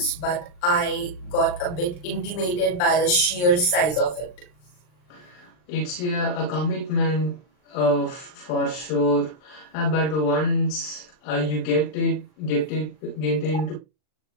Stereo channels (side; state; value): right; late; 39 ms